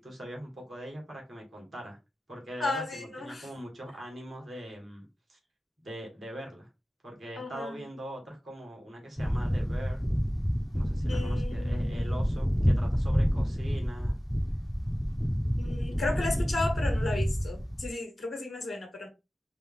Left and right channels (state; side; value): normal; both; correlation 0.96